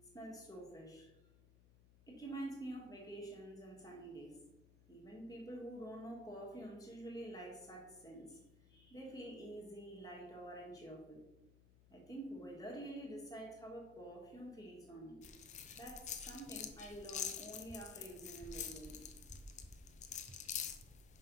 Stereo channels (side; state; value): left; noise; hum, 20 dB below the sound